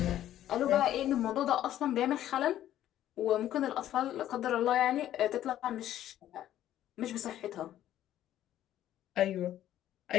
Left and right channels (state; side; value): quieter; right; 12.3 dB